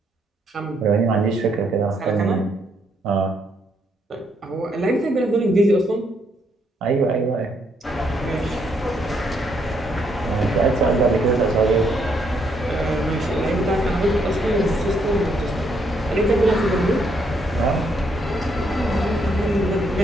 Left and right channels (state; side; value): normal; both; correlation 0.73